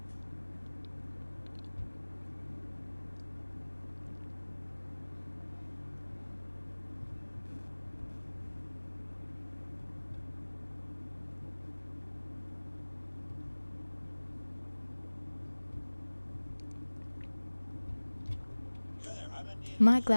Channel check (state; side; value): inverted; both; correlation -1.00